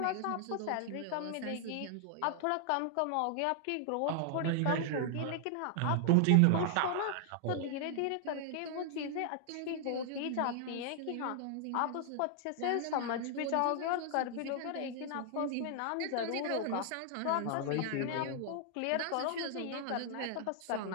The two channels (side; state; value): both; different; correlation 0.00